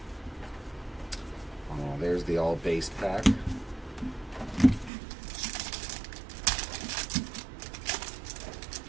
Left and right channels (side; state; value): left; drops out; at 4.9 s